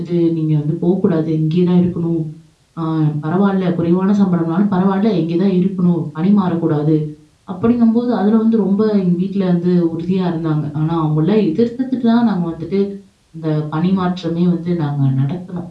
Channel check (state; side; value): identical; both; correlation 1.00